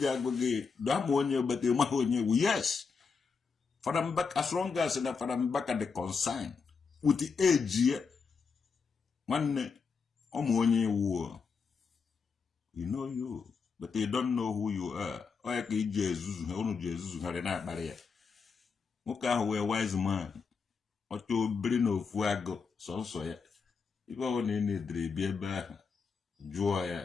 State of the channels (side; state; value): right; quieter; 5.3 dB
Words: agụ gị dama onye but ị maghị onye ewu yes Fada Mbaka as long as na Fada Mbaka the concern with the age nwanne ọmụ onye ewu you know you but they don't know who you are ọ ya ka iji ezuzu ha unu ji ezuzu ha na-akparị ya nwoke ahụ wee wise man ọcha obere na ofu agụ sọnsọ ya ibe ọ na ị na-edere bi ebe ahụ jụọ ya